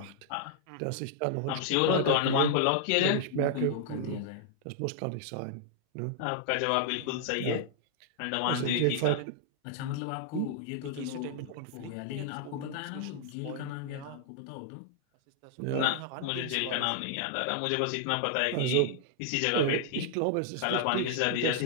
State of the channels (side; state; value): both; different; correlation -0.01